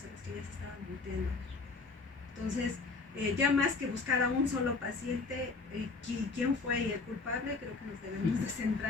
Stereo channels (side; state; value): right; quieter; 4.1 dB